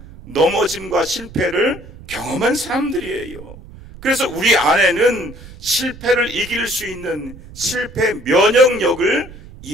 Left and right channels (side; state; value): right; noise; rumble, 17 dB below the sound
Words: 넘어짐과 실패를 경험한 사람들이에요. 그래서 우리 안에는 실패를 이길 수 있는 실패 면역력을